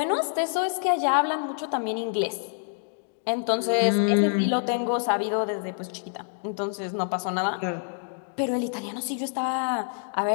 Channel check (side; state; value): right; silent; digital silence